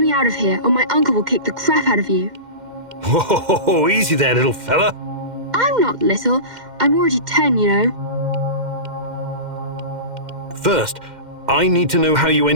me out of here, or my uncle will kick the crap out of you. Whoa, easy there, little fella. I'm not little. I'm already 10, you know. First, I need to know how you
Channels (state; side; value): late; left; 2.1 ms